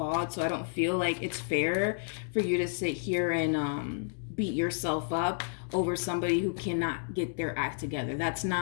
so I don't feel like it's fair for you to sit here and beat yourself up over somebody who cannot get their act together. That's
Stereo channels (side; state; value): right; silent; digital silence